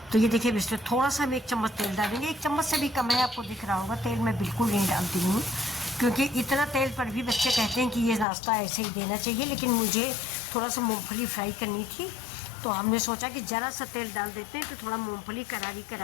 तो ये देखिए, इसमें थोड़ा सा हम 1 चम्मच तेल डालेंगे। 1 चम्मच से भी कम है, आपको दिख रहा होगा। तेल मैं बिल्कुल नहीं डालती हूँ, क्योंकि इतना तेल पर भी बच्चे कहते हैं कि ये नाश्ता ऐसे ही देना चाहिए, लेकिन मुझे थोड़ा सा मूँगफली फ्राई करनी थी, तो हमने सोचा कि ज़रा सा तेल डाल देते हैं तो थोड़ा मूंगफली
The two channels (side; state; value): right; drops out; at 8.2 s